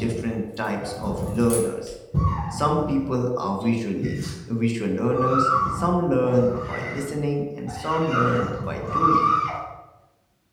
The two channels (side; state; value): both; identical; correlation 1.00